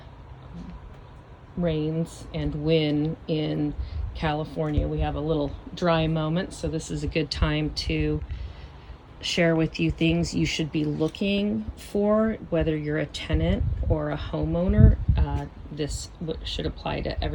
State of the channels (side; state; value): both; identical; correlation 1.00